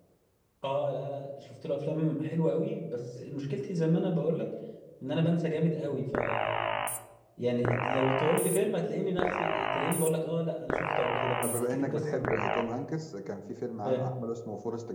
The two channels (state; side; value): identical; both; correlation 1.00